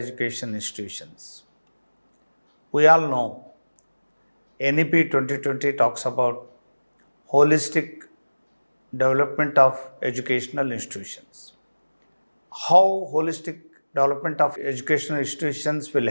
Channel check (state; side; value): inverted; both; correlation -1.00